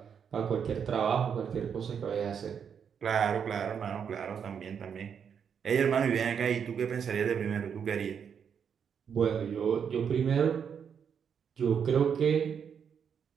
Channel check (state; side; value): quieter; left; 7.4 dB